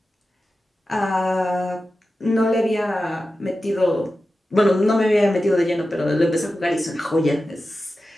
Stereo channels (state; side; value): normal; both; correlation 0.93